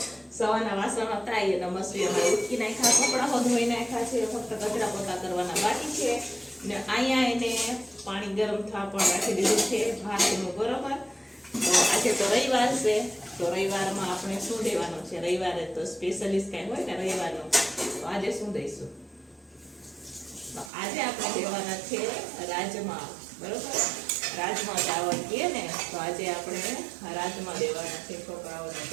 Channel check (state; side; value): drops out; left; at 20.7 s